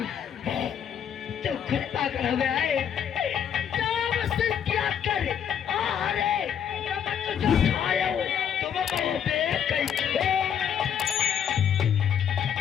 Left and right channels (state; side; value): quieter; right; 8.6 dB